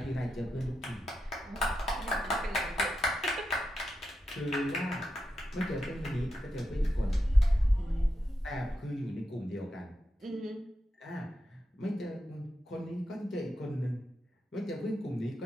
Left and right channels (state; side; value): normal; both; correlation 0.87